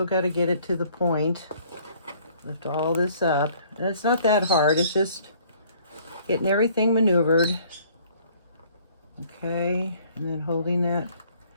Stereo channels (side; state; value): both; inverted; correlation -0.58